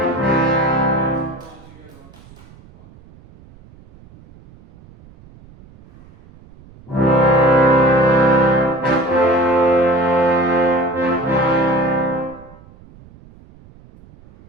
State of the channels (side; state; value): right; noise; rumble, 24 dB below the sound